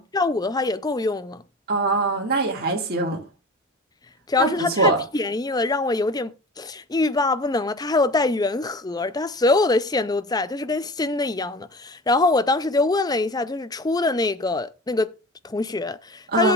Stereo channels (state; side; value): normal; both; correlation 0.35